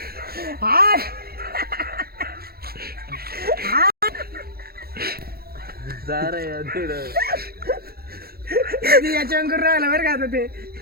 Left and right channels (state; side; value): late; left; 0.44 ms